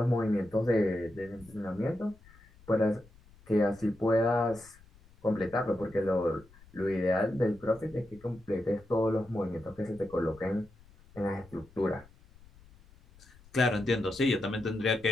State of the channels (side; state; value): left; noise; rumble, 25 dB below the sound